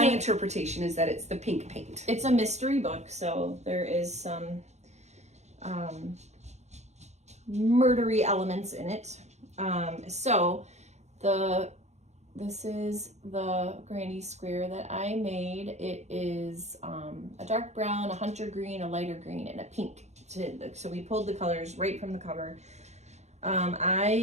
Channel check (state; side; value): late; left; 0.33 ms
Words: interpretation is that it's the pink paint. It's a mystery book, so there is some murdery elements in it. So this is the granny square that I made. It is a dark brown, a hunter green, a lighter green, and a pink. So we pulled the colors right from the cover.